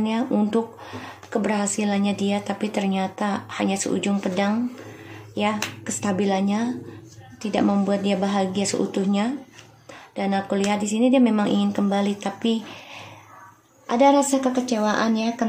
untuk keberhasilannya dia, tapi ternyata hanya seujung pedang ya, kestabilannya tidak membuat dia bahagia seutuhnya. Dan aku lihat di sini dia memang ingin kembali, tapi ada rasa kekecewaan ya.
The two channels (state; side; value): identical; both; correlation 1.00